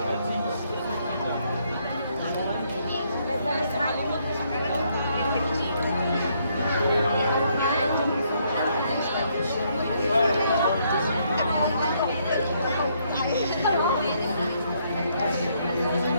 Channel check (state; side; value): inverted; both; correlation -0.71